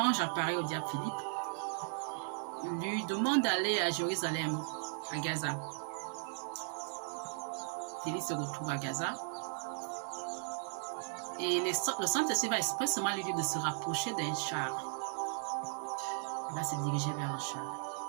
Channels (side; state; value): left; silent; digital silence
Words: apparaît au diacre Philippe, lui demande d'aller à Jérusalem, à Gaza. Philippe se retrouve à Gaza. Et le Saint-Esprit va expressément lui dire de se rapprocher d'un char. Il va se diriger vers le char.